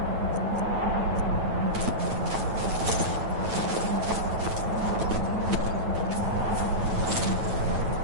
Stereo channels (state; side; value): late; left; 9.0 ms